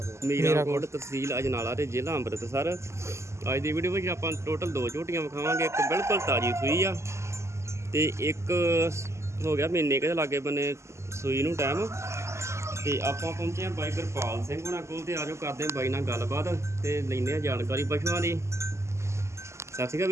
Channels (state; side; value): late; left; 0.13 ms